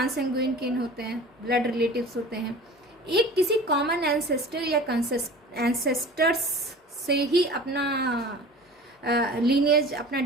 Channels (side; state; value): both; normal; correlation 0.40